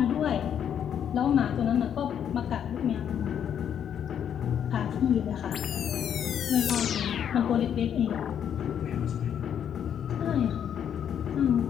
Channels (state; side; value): quieter; right; 8.9 dB